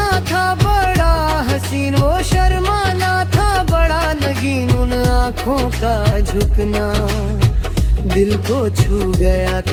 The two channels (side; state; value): both; identical; correlation 1.00